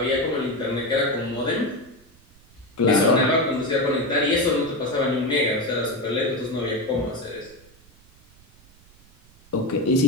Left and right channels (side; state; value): right; noise; rumble, 28 dB below the sound